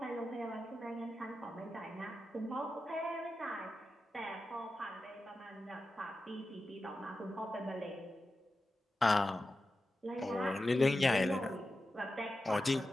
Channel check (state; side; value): normal; both; correlation 0.92